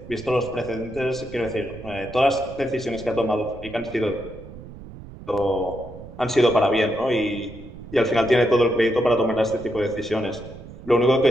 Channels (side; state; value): right; noise; rumble, 15 dB below the sound